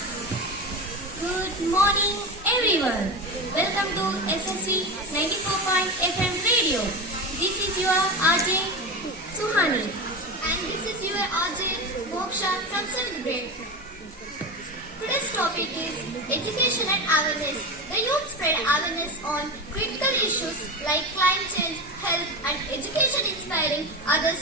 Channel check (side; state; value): both; normal; correlation 0.22